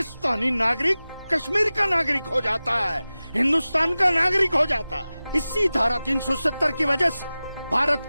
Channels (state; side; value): inverted; both; correlation -0.96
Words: नागरिक कश्मीर का नागरिक हो जाता है, हिंदुस्तान का नागरिक हो जाता है। इसी धारा 370 की वजह से भारत